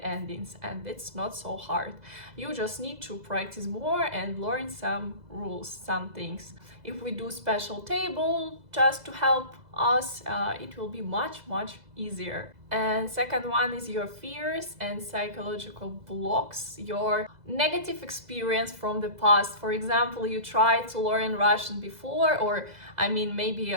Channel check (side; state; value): left; late; 2.0 ms